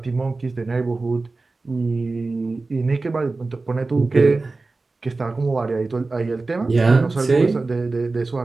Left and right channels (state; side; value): quieter; left; 3.6 dB